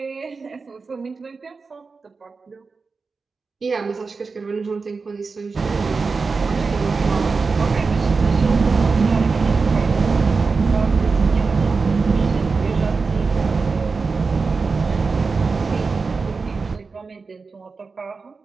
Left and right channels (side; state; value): left; quieter; 4.5 dB